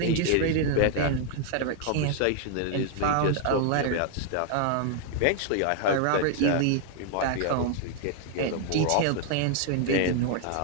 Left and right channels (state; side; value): different; both; correlation 0.00